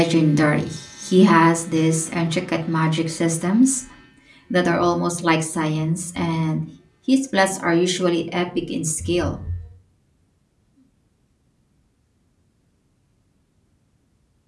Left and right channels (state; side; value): identical; both; correlation 1.00